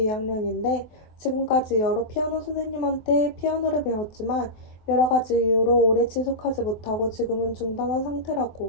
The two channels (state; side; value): late; right; 23 ms